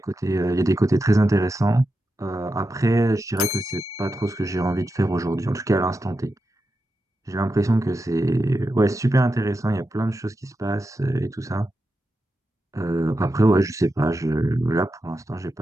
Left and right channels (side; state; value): both; normal; correlation 0.89